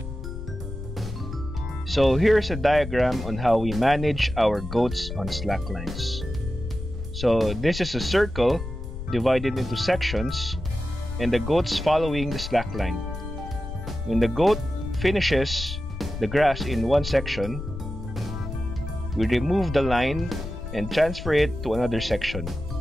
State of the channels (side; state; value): left; noise; rumble, 8 dB below the sound